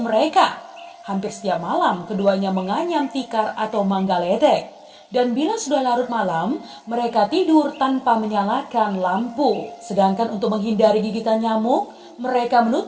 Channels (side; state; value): both; identical; correlation 1.00